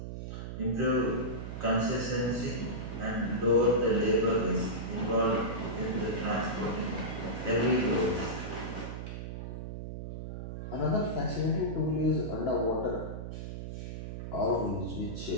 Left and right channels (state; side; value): noise; right; hum, 7 dB below the sound